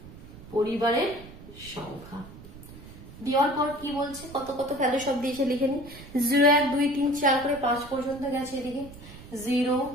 পরিবারের সংখ্যা দেওয়ার পর কি বলছে, কত কত ভ্যালু সব দিয়েছে লিখে নি। 0 1 2 3 4 করে 5 পর্যন্ত গেছে। এদিকে 0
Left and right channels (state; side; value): noise; right; rumble, 17 dB below the sound